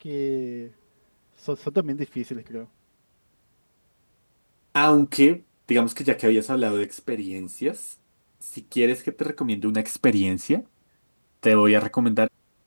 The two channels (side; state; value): both; inverted; correlation -1.00